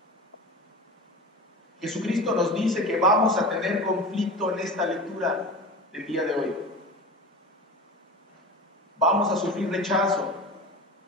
Jesucristo nos dice que vamos a tener conflicto en esta lectura del día de hoy. Vamos a sufrir rechazo.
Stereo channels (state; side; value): normal; both; correlation 0.31